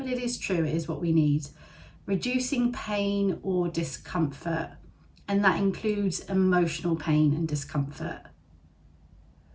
it is true, it is what we need. Reducing pain or discomfort, and that includes emotional pain and discomfort.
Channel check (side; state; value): both; identical; correlation 1.00